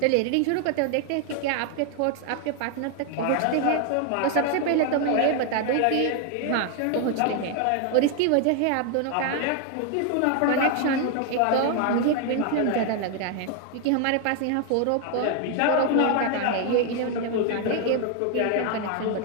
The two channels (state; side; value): different; both; correlation 0.00